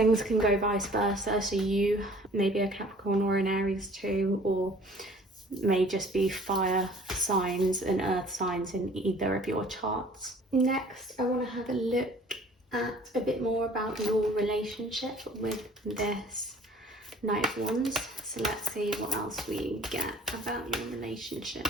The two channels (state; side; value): normal; both; correlation 0.51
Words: can go vice versa. So you may be a Capricorn or an Aries too, or may just be fire signs and earth signs in either of your charts. Next, I want to have a look at a bit more about your relationship with this Knight of Wands. So let's see what else we get about your relationship.